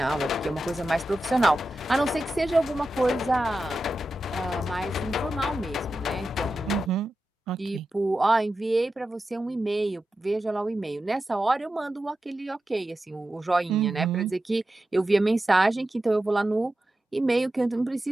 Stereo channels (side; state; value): both; normal; correlation 0.91